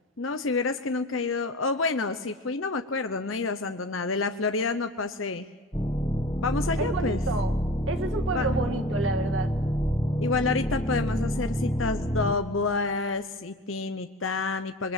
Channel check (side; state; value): both; normal; correlation 0.35